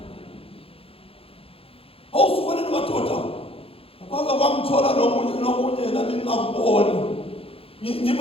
Awusukane nemadoda kwaka kwamthola nomunye nami ngingakuboni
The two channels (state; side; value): late; right; 0.27 ms